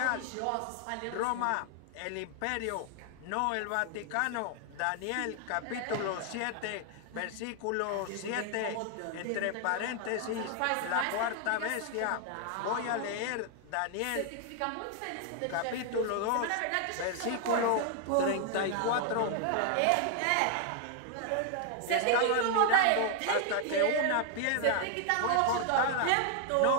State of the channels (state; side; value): different; both; correlation 0.00